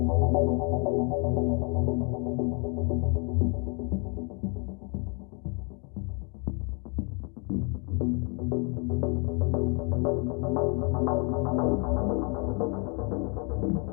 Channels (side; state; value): right; quieter; 34.8 dB